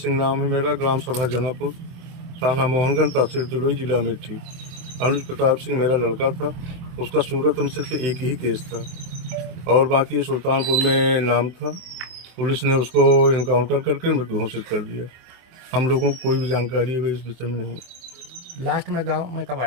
नाम है मेरा, ग्राम सभा जनापुर, थाना मोहनगंज, तहसील तुलई, जिला अमेठी। अनुज प्रताप सिंह मेरा लड़का था। उसका सूरत में सिर्फ एक ही केस था और बाकी सुल्तानपुर में नाम था। पुलिस ने उसको इनकाउंटर करके मृत घोषित कर दिया। हम लोगों को कोई भी जानकारी है इस विषय में नहीं है। लास्ट में गांव में कब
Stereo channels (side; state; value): left; late; 23 ms